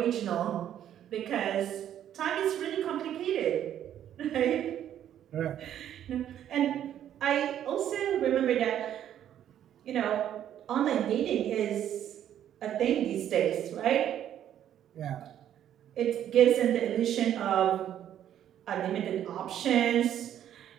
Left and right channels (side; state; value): left; quieter; 10.6 dB